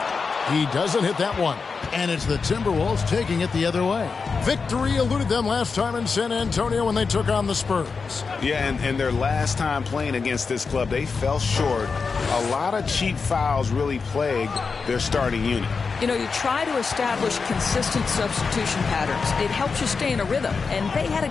He doesn't hit that one. And it's the Timberwolves taking it the other way. Victory eluded them last time in San Antonio when they took on the Spurs. Yeah, and their last time playing against this club, they fell short. A lot of cheap fouls really plagued their starting unit. You know, you try to establish consistent substitution patterns. It helps you stay in a rhythm, and they had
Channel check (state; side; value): quieter; right; 4.9 dB